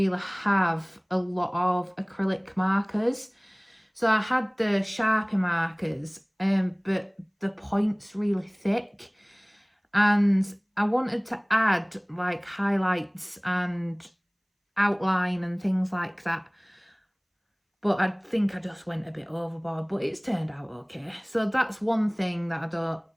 have a lot of acrylic markers. So I had the Sharpie markers, but the point's really thick. And I wanted to add like highlights and outline and things like that. But I think I just went a bit overboard, but it's turned out okay. So that's one thing that I don't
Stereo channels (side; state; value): both; identical; correlation 1.00